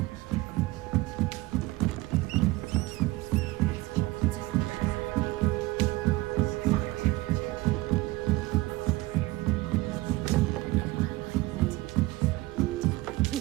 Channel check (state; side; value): quieter; left; 20.2 dB